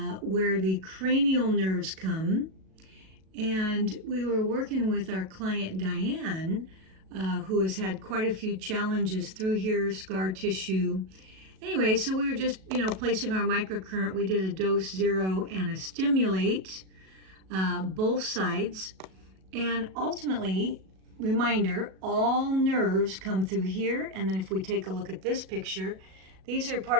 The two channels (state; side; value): late; left; 37 ms